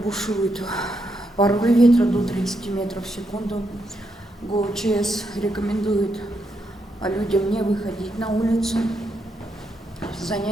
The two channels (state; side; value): normal; both; correlation 0.80